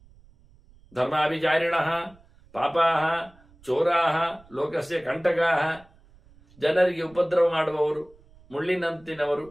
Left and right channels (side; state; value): right; noise; rumble, 27 dB below the sound